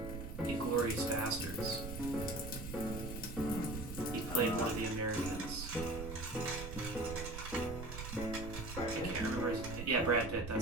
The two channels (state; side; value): noise; right; rumble, 8 dB below the sound